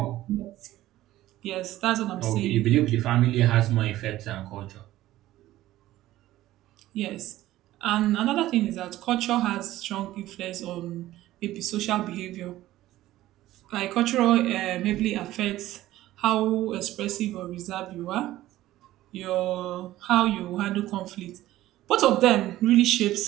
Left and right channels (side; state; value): left; quieter; 15.2 dB